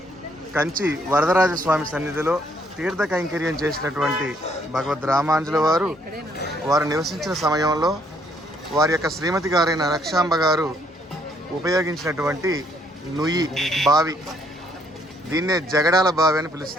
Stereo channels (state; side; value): normal; both; correlation 0.68